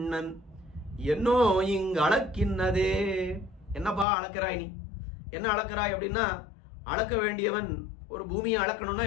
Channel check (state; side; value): drops out; right; at 4.0 s